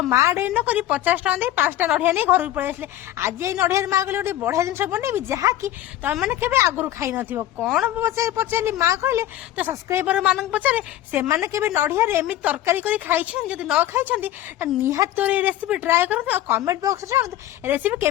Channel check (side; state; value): right; quieter; 13.6 dB